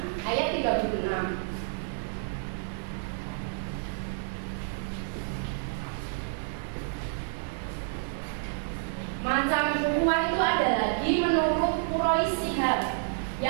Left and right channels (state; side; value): silent; left; digital silence